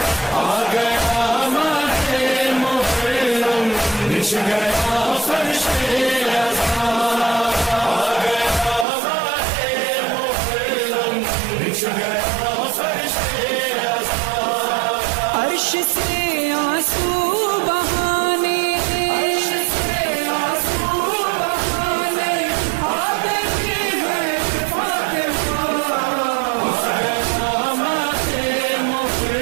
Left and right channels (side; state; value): left; drops out; at 8.8 s